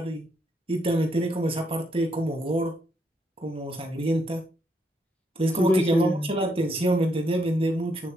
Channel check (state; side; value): normal; both; correlation 0.76